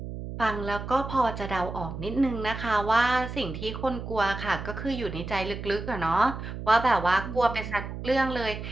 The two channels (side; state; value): right; noise; hum, 8 dB below the sound